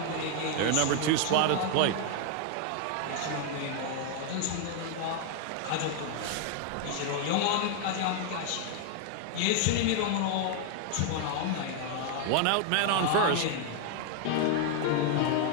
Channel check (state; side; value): different; both; correlation 0.00